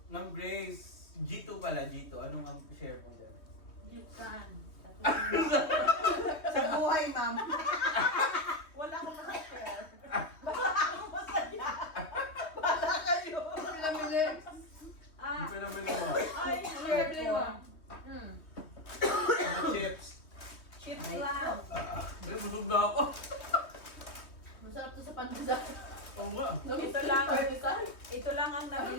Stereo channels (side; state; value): right; late; 3.2 ms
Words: Ma'am Grace, G2 pala, G2. Anong ang share mo dyan? Yukan. Sa buhay, ma'am. Wala akong masashare. Pinamili. Hindi pa naman mo. Ay, Pinamili mo. Mga chips. Chips lang. Ay, busog na ako. Masarap to sa pandesal. Oo nga. ito lang. Pandesal. Ito lang ang